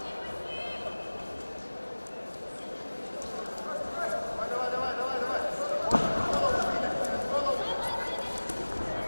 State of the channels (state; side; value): inverted; both; correlation -1.00